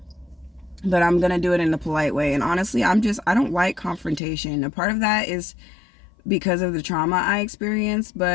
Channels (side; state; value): right; drops out; at 4.2 s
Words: But I'm gonna do it in a polite way. And honestly, I don't like confrontation. A part of that is because of the trauma I experienced,